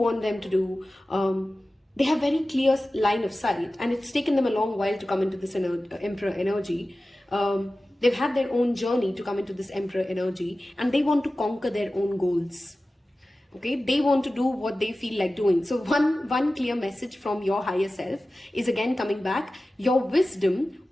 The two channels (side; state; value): both; normal; correlation 0.96